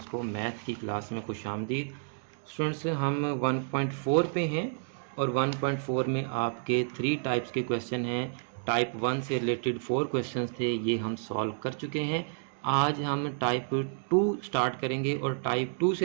को मैथ की क्लास में खुशामदीद। स्टूडेंट्स हम 1.4 पे हैं और 1.4 में आपके 3 टाइप्स के क्वेश्चन हैं। टाइप 1 से रिलेटेड 4 क्वेश्चंस थे, ये हम सॉल्व कर चुके हैं। आज हम टाइप 2 स्टार्ट करेंगे और टाइप 2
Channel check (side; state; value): left; silent; digital silence